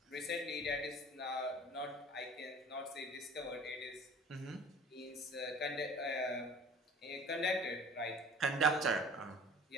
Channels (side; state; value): both; normal; correlation 0.45